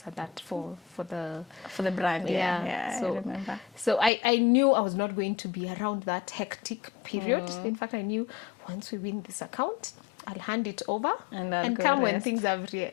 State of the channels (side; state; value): right; drops out; at 4.1 s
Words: at that for the for the brand. Yeah, so I remember. so I knew I was not going to be around that hectic period. In fact, I knew once we win this account, I'll hand it over And I'll and go come when rest. things